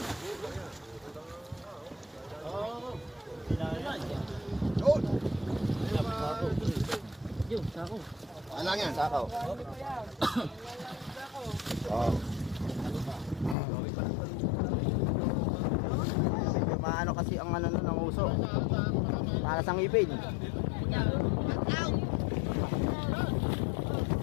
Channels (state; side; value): drops out; right; at 13.6 s